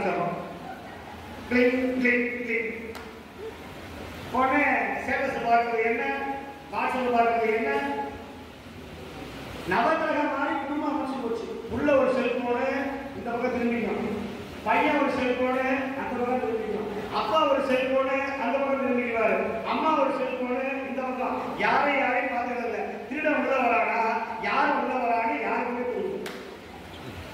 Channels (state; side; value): identical; both; correlation 1.00